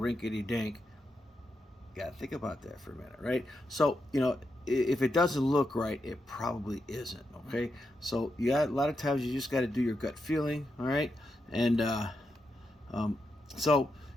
dink, got to think about that for a minute, right? So, if it doesn't look right, it probably isn't, okay? So, a lot of times you just got to do your gut feeling, all right? And so,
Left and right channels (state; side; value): normal; both; correlation 0.85